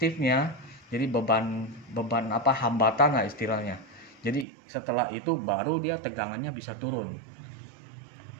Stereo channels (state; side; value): drops out; left; at 4.5 s